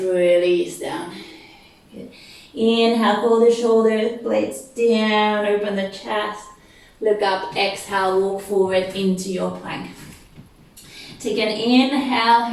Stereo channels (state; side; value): identical; both; correlation 1.00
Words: down. Good. Inhale, pull the shoulder blades down, open the chest. Look up, exhale, walk forward into your plank. Take an inhale